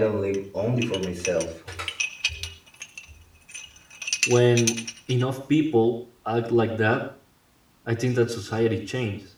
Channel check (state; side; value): identical; both; correlation 1.00